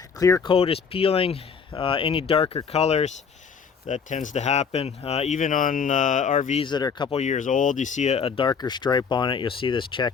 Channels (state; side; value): quieter; right; 6.1 dB